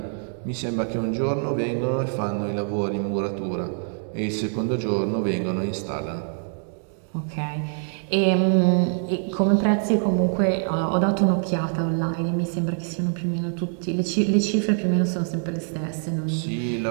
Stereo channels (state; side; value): silent; left; digital silence